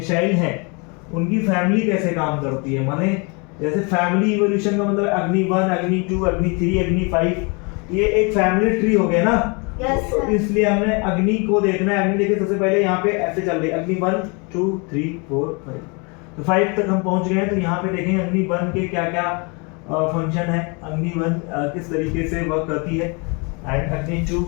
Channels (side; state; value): right; quieter; 31.7 dB